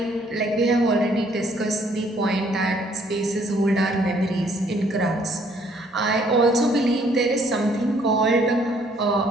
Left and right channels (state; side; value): normal; both; correlation 0.64